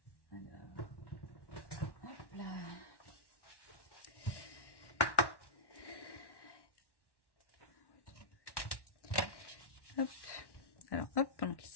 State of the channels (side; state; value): right; late; 1.1 ms